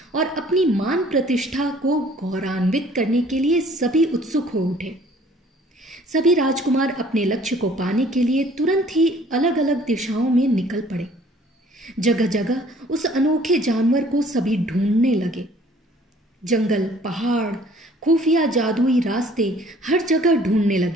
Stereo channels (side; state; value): both; normal; correlation 0.55